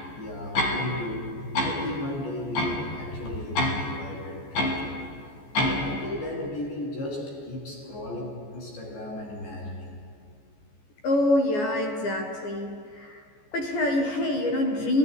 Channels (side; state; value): right; late; 14 ms